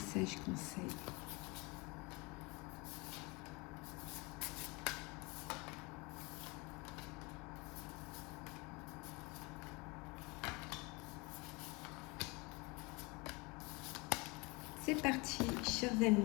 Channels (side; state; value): right; quieter; 26.8 dB